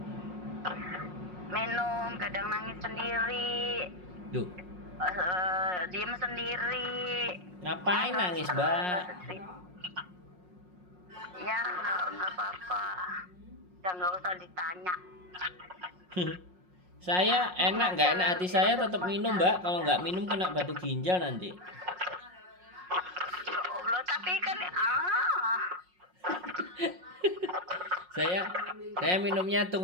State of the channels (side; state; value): left; late; 5.5 ms